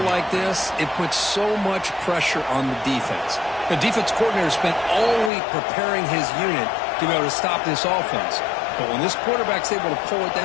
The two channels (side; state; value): right; drops out; at 5.3 s